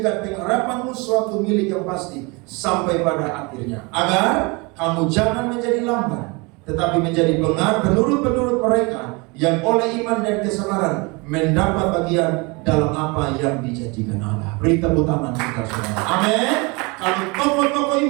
pengharapanmu suatu milik yang pasti sampai pada akhirnya, agar kamu jangan menjadi lamban, tetapi menjadi penurut-penurut mereka yang oleh iman dan kesabaran mendapat bagian dalam apa yang dijanjikan Allah. Beri tepuk tangan kita semua. Amin. Kalau tokoh-tokoh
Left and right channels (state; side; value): quieter; left; 27.9 dB